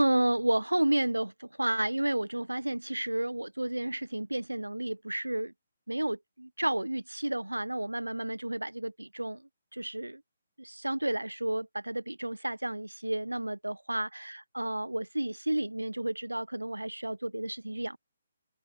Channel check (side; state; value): both; inverted; correlation -1.00